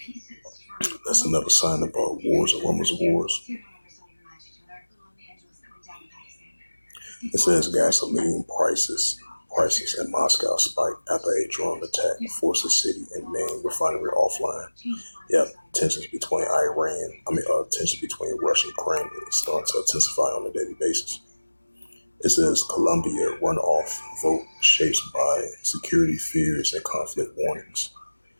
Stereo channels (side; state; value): both; inverted; correlation -1.00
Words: That's another sign about wars and rumors of wars. It says gasoline prices in Moscow spike after a drone attack forced the city and main refinery offline. Yeah, tensions between Russia and Ukraine is starting to intensify on a daily basis. It says Colombia runoff vote shaped by security fears and conflict warnings.